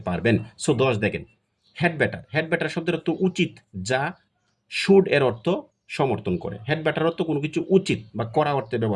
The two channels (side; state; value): both; identical; correlation 1.00